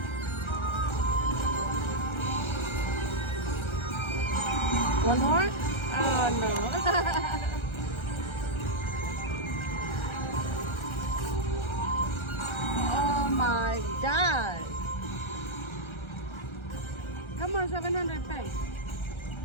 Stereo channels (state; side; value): late; right; 1.3 ms